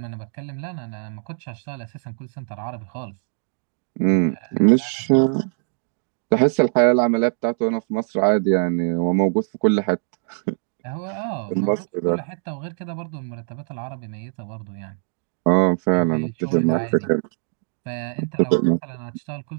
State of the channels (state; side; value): silent; left; digital silence